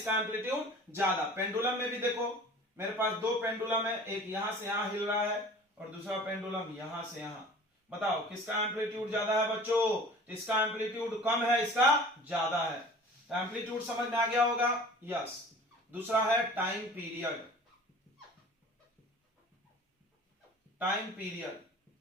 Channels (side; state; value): both; normal; correlation 0.44